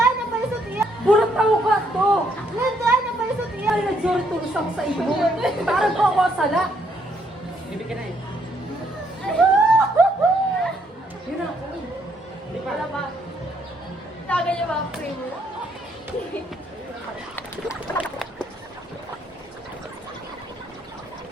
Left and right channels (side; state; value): both; normal; correlation 0.71